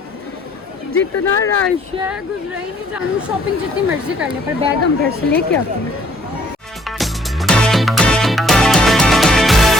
जितना रश है गुजरा ही नहीं जानू। शॉपिंग जितनी मर्जी कर ले पर बैग हम घर से लेके आते हैं।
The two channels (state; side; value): normal; both; correlation 0.62